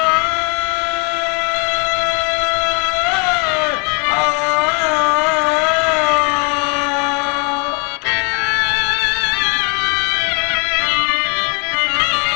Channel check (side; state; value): right; quieter; 35.0 dB